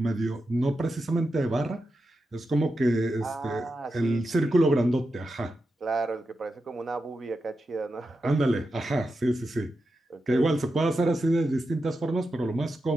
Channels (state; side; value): normal; both; correlation 0.89